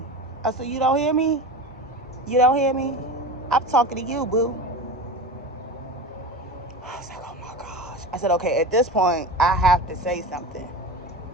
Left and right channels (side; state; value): both; normal; correlation 0.28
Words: I said, you don't hear me? You don't hear me? I'm talking to you, boo. I was like, oh my gosh. I said, okay, at this point, I have to say something.